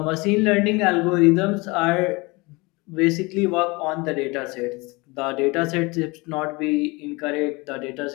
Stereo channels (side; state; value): right; quieter; 25.3 dB